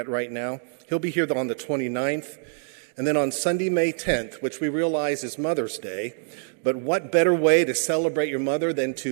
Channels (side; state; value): left; silent; digital silence